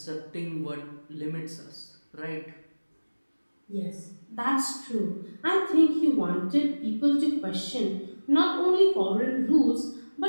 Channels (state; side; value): inverted; both; correlation -1.00